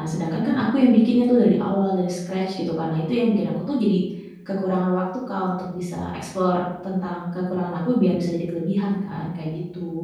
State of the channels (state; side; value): identical; both; correlation 1.00